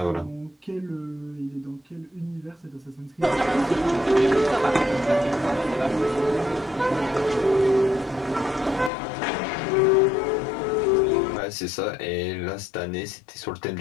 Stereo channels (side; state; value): right; drops out; at 8.9 s